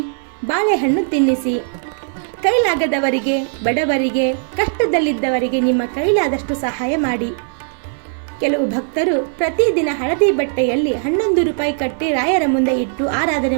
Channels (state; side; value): silent; left; 57 dB below the other